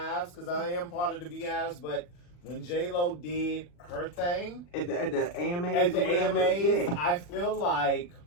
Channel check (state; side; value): late; right; 40 ms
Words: because I am part of the Beehives. But when J-Lo did her thing At the AMAs, at the or whatever, AMAs, yeah. I feel like